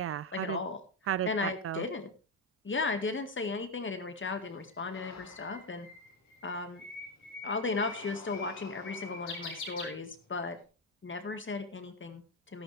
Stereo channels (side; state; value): both; normal; correlation 0.07